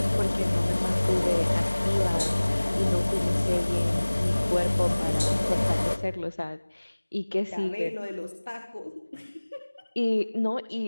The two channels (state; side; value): inverted; both; correlation -1.00